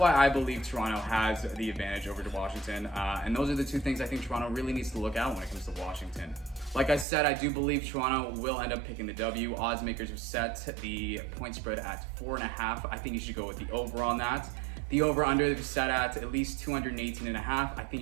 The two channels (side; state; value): left; drops out; at 7.1 s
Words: I believe Toronto has the advantage over to Washington. And those are the two things I think Toronto really needs to look at when it comes to Washington. Like I said, I do believe Toronto will end up picking the W. Odds makers have set the point spread at 4.5. I think you should go with the over on that. The over-under is set at least 218.5. I think